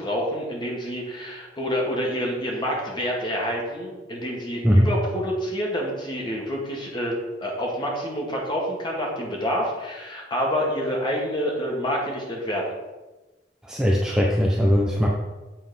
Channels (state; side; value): normal; both; correlation 0.62